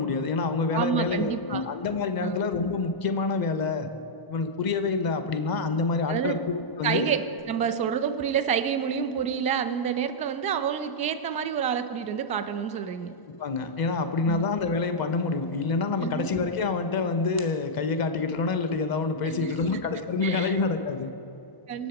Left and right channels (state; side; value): late; right; 1.0 ms